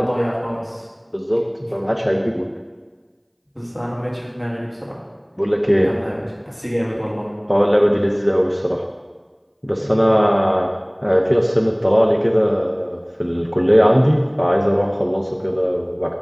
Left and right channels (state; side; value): identical; both; correlation 1.00